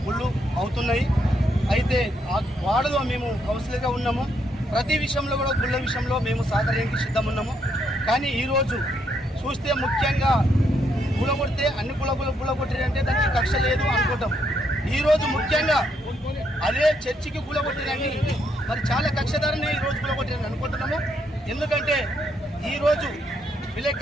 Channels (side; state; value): both; normal; correlation 0.75